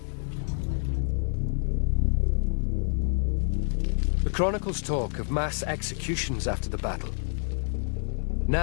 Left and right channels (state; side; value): silent; right; 59 dB below the other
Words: The chronicles talk of mass executions after the battle.